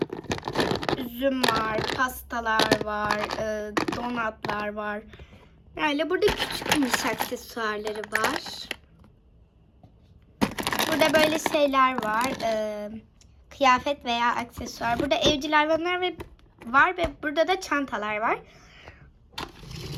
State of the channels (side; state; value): both; identical; correlation 1.00